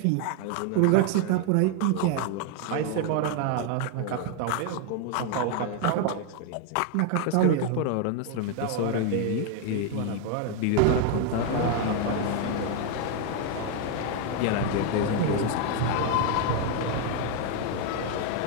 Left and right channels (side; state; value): both; different; correlation 0.01